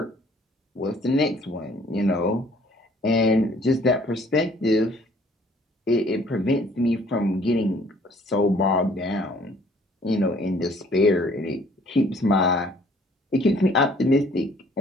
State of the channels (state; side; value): normal; both; correlation 0.58